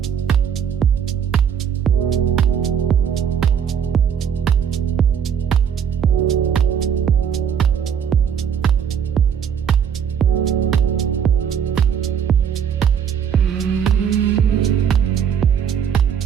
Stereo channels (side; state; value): left; quieter; 7.9 dB